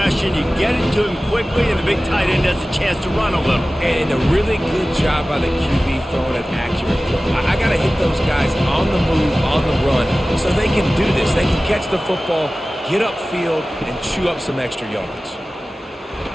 You get it to him quickly, and the big tight end has a chance to run a little. And a really good job by the QB throwing an accurate throw. I got to hit those guys on the move, on the run, so they can do this. They can catch the football, get upfield, and chew up some extra yards.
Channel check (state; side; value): normal; both; correlation 0.97